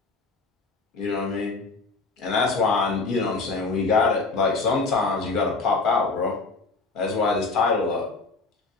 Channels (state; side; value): quieter; right; 3.9 dB